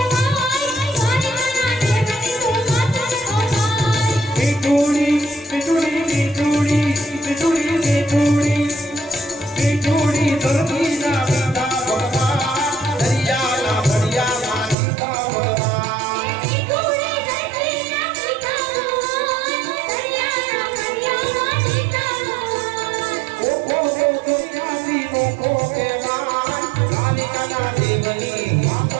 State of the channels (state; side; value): drops out; left; at 14.8 s